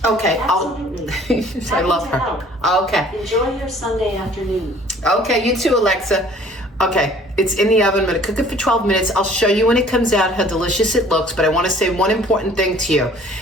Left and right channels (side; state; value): both; normal; correlation 0.53